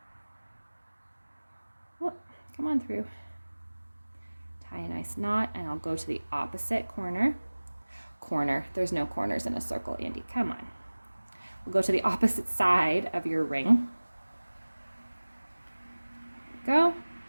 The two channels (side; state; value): both; inverted; correlation -1.00